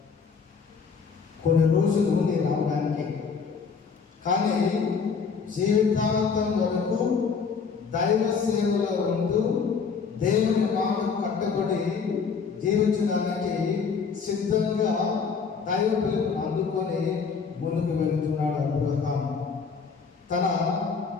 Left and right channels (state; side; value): quieter; right; 5.6 dB